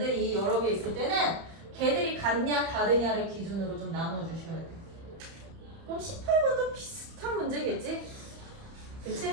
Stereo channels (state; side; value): late; left; 30 ms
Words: 여러 개 있을 때는 걔들이 같냐 다르냐를 기준으로 좀 나눠주셔야 돼요. 그럼 18번도 비슷한 문제겠지?